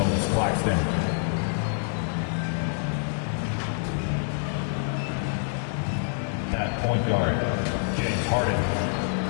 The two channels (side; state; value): right; silent; digital silence